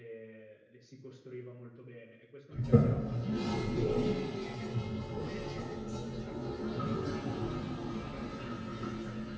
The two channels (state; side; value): identical; both; correlation 1.00